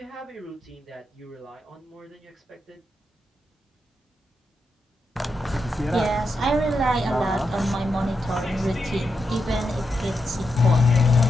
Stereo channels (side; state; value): both; normal; correlation 0.85